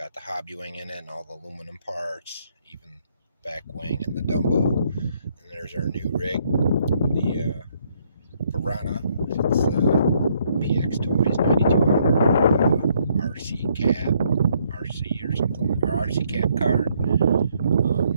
the hobby wing in it and all the aluminum parts, even back wing and the Dumbo. And there's our new rig, the Piranha. It's PX Toys 9200 RC cab, RC or something, or RC cab car.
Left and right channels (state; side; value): inverted; both; correlation -0.70